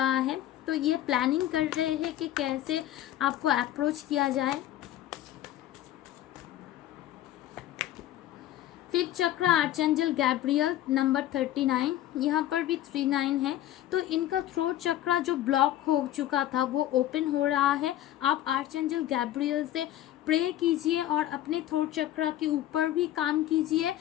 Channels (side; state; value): right; quieter; 13.1 dB